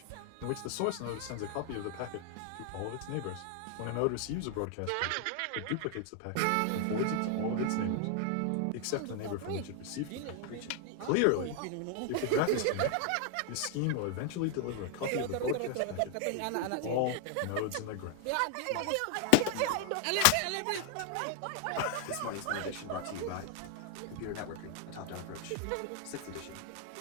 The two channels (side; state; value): both; different; correlation 0.00